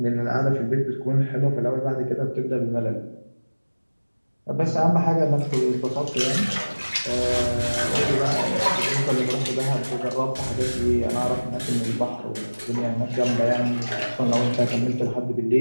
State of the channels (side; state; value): both; inverted; correlation -1.00